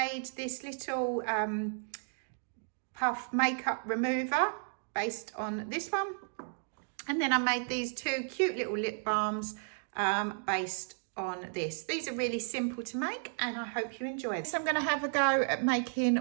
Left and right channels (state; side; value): silent; left; digital silence